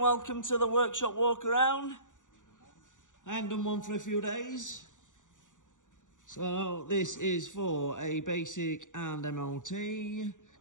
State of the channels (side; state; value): right; late; 0.86 ms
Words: welcome to the workshop walk around. I haven't done one for a few days. So this is for a basic and MOT.